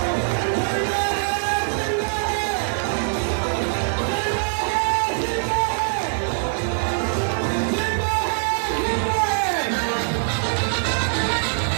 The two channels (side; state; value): left; silent; digital silence